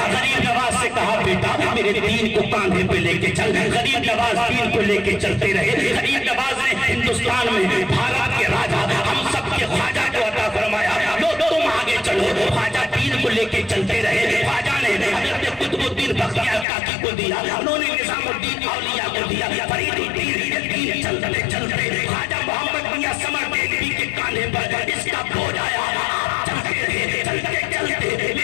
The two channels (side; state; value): right; drops out; at 16.7 s